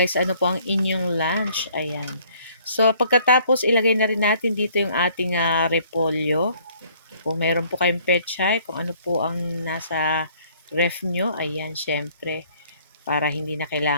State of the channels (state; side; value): inverted; both; correlation -0.60